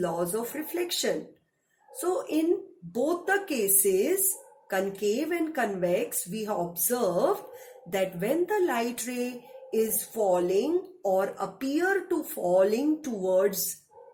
of reflection. So in both the cases, concave and convex, we have observed that when the light ray is falling or appear to falling towards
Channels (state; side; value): identical; both; correlation 1.00